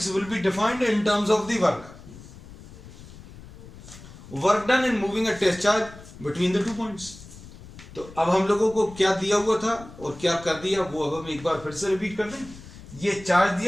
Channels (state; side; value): noise; left; rumble, 18 dB below the sound